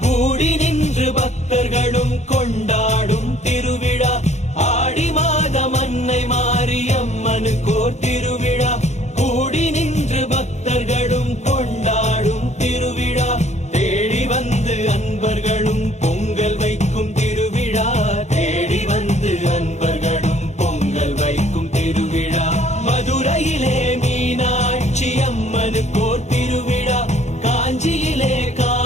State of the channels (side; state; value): right; late; 0.33 ms